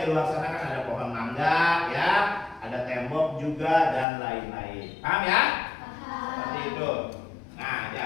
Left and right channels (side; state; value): right; drops out; at 4.0 s